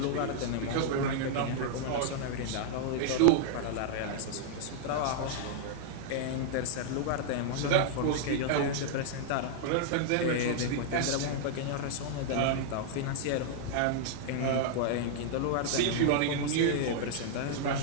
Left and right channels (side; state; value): both; different; correlation -0.01